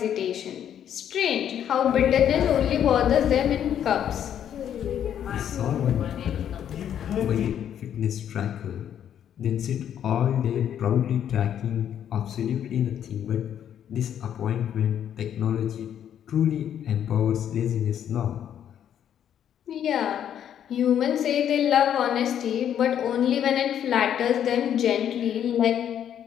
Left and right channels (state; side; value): quieter; right; 9.7 dB